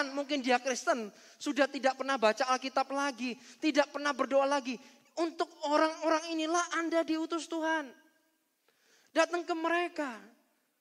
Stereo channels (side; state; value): both; identical; correlation 1.00